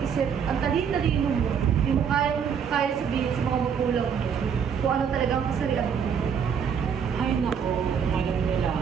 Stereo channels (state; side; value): quieter; left; 7.2 dB